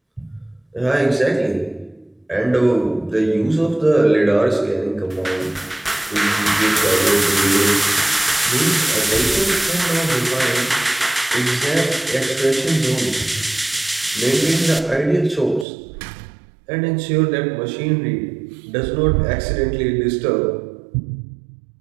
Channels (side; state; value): left; drops out; at 15.7 s